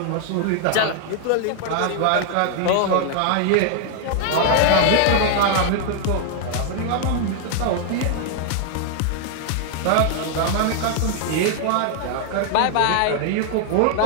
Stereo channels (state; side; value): different; both; correlation 0.00